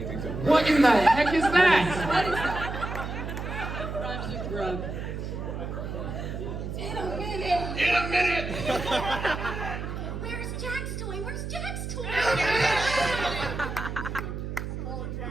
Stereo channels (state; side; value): noise; right; hum, 6 dB below the sound